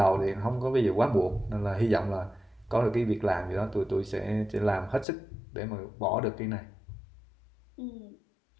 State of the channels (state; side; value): drops out; right; at 5.1 s